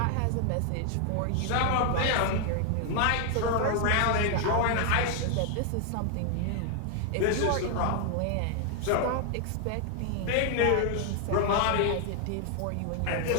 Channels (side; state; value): both; different; correlation 0.00